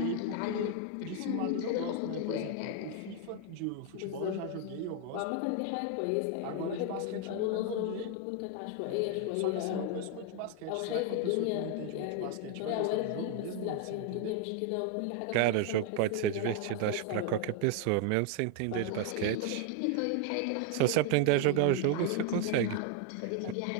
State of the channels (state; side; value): different; both; correlation 0.01